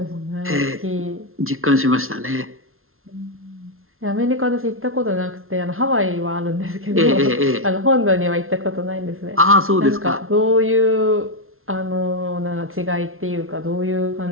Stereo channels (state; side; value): late; left; 0.61 ms